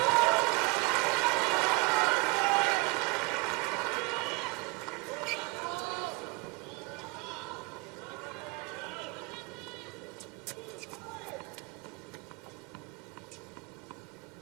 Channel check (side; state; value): left; quieter; 26.1 dB